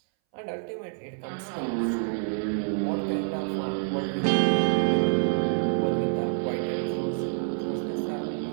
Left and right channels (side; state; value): left; silent; 60 dB below the other